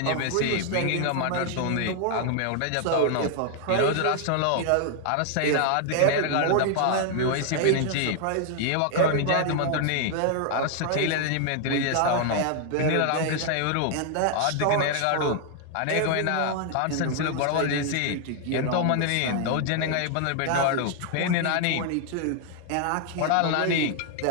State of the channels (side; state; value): both; different; correlation 0.00